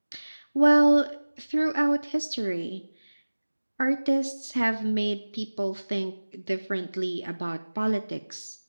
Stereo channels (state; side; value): inverted; both; correlation -1.00